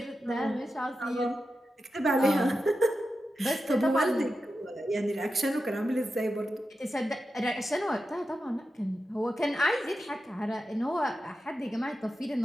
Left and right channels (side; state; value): both; normal; correlation 0.90